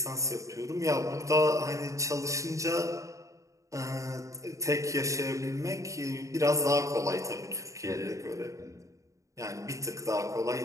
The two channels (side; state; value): left; late; 0.15 ms